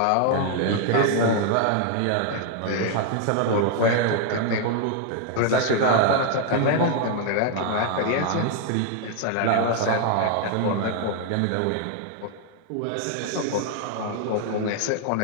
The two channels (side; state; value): both; different; correlation 0.00